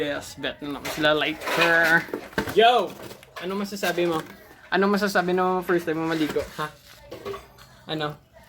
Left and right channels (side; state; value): both; identical; correlation 1.00